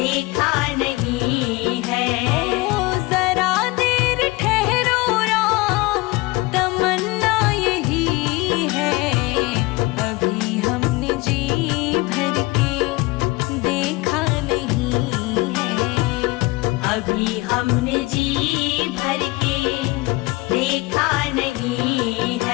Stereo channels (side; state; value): right; quieter; 22.4 dB